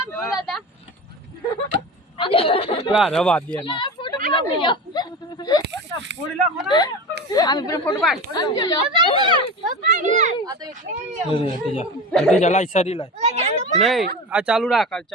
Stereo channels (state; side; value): normal; both; correlation 0.29